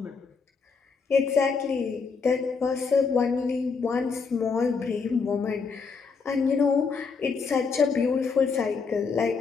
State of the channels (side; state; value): right; quieter; 5.1 dB